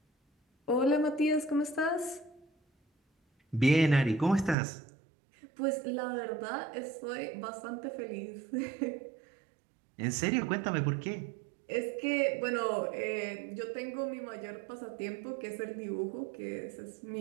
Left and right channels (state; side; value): drops out; left; at 4.5 s